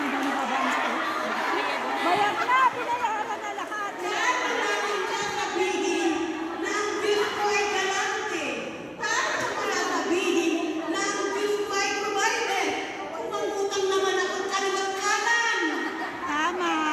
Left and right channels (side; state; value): both; identical; correlation 1.00